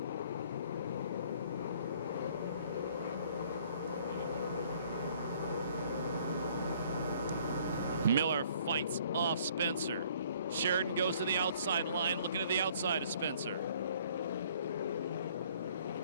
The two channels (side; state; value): both; inverted; correlation -0.58